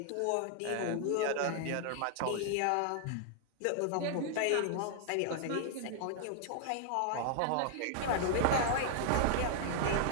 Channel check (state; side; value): different; both; correlation 0.00